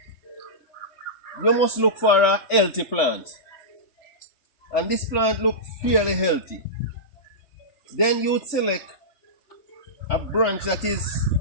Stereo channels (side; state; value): right; late; 3.7 ms